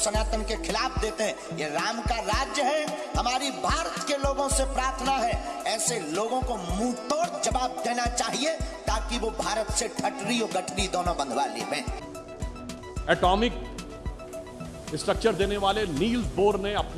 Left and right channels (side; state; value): both; identical; correlation 1.00